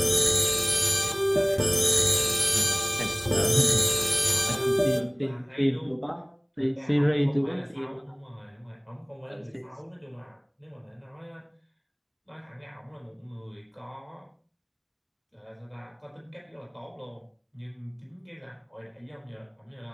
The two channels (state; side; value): identical; both; correlation 1.00